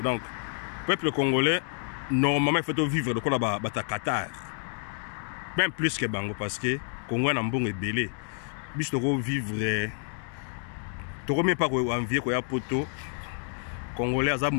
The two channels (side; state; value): right; silent; 59 dB below the other